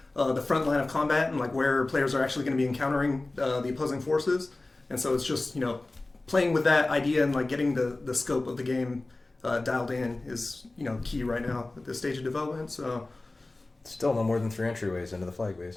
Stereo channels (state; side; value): quieter; right; 3.0 dB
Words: the front line of combat, and, like, where players are actually going to be encountering the opposing forces. And so it's just, you know, playing with that idea and, like, getting the scope of the game dialed in is, you know, key right now at this stage of development. So... Still no more than 3 entryways into the flag